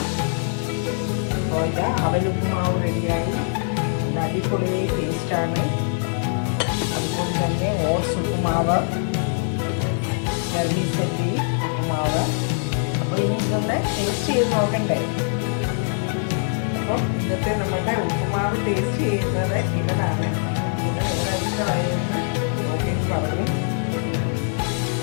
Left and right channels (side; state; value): right; silent; 63 dB below the other